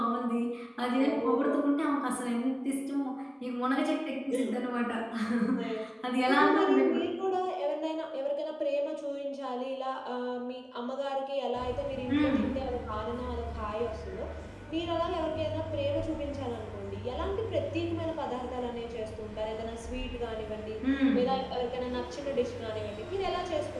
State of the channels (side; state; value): both; identical; correlation 1.00